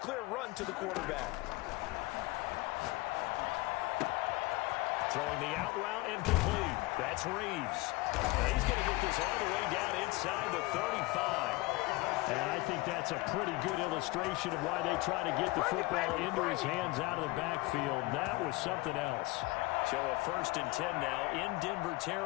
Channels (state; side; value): quieter; right; 22.0 dB